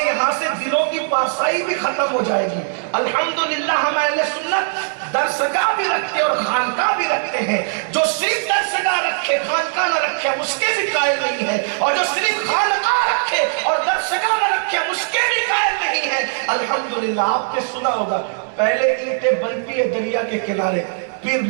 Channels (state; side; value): silent; left; digital silence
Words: یہاں سے دلوں کی پارسائی بھی ختم ہو جائے گی۔ الحمدللہ ہم اہل سنت درسگاہ بھی رکھتے اور خانقاہ بھی رکھتے ہیں۔ جو صرف درسگاہ رکھے خانقاہ نہ رکھے ہم اس کے بھی قائل نہیں ہے، اور جو صرف خانقاہ رکھے اور درسگاہ نہ رکھے ہم اس کے بھی قائل نہیں ہے۔ الحمدللہ آپ نے سنا ہوگا پہلے اینٹیں بنتی ہے دریا کے کنارے، پھر